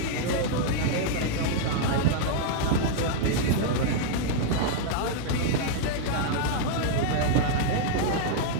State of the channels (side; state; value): both; different; correlation -0.01